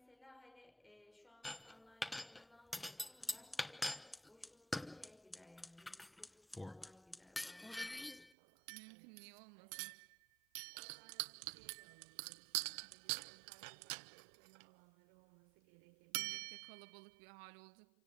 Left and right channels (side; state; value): left; drops out; at 8.3 s